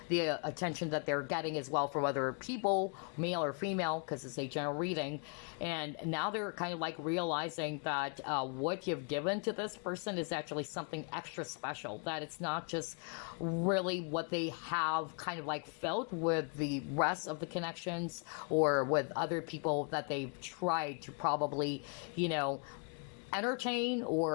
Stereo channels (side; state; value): right; quieter; 39.5 dB